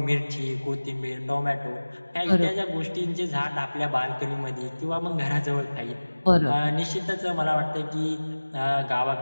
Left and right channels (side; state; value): both; inverted; correlation -1.00